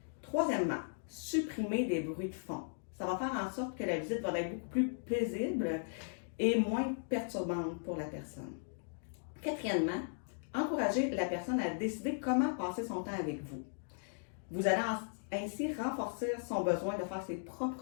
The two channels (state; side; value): silent; right; digital silence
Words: Troisièmement, supprimer des bruits de fond. Ça va faire en sorte que la visite va être beaucoup plus paisible et moins perturbante pour la personne. Quatrièmement, encouragez la personne à décider comment passer son temps avec vous. Vous allez ainsi renforcer son besoin de faire ses